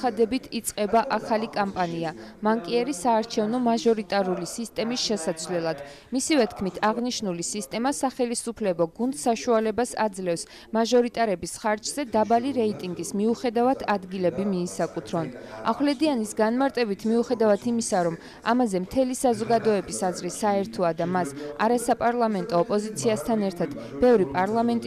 იწყება ახალი კამპანია მანკიერი საარჩევნო მაჟორიტარული სისტემის შესაცვლელად. მისივე თქმით, აღნიშნული სისტემა სახელისუფლებო გუნდს საშუალებას აძლევს მაჟორიტარების ხარჯზე დაბალი რეიტინგის მიუხედავად ადგილები მიისაკუთრონ. ახვლედიანის განმარტებით მიუხედავად იმისა, რომ ამაზე მთელი საზოგადოების აზრი საერთოა და მას არასაპარლამენტო ოპოზიციასთან ერთად ბევრი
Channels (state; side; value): identical; both; correlation 1.00